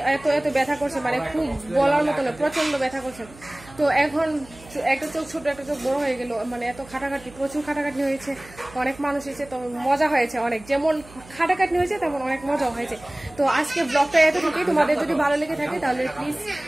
এত এত ব্যথা করছে, মানে খুব বলার মতো না, প্রচন্ড ব্যথা করছে। তো এখন একটা চোখ ছোট একটা চোখ বড় হয়ে গেল, মানে এত খাটাখাটি, প্রচুর খাটাখাটি হয়েছে, অনেক মানুষ এসেছে, তো মজা হয়েছে অনেক। যেমন খাটাখাটি হয়েছে তেমন অনেক মজা হয়েছে। তো আজকে ব্লগটা এতটুকুই। তোমাদের যদি ভালো লেগে থাকে তাহলে প্লিজ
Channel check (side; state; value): right; noise; hum, 21 dB below the sound